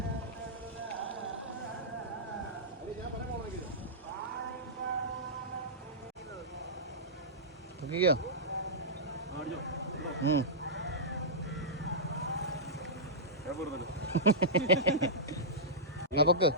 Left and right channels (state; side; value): normal; both; correlation -0.14